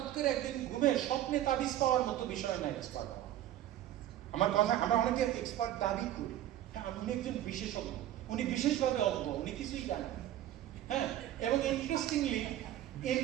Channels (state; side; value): quieter; left; 12.8 dB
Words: করে একদিন ঘুমে স্বপ্নে তাবিজ পাওয়ার মতো বিষয় না এক্সপার্ট হওয়া। আমার কথা, আমরা অনেকে এক্সপার্ট দাবি করি, হ্যাঁ উনি একজন বিশেষজ্ঞ, উনি বিশেষভাবে অজ্ঞ, উনি কিছুই জানেন। হ্যাঁ, এবং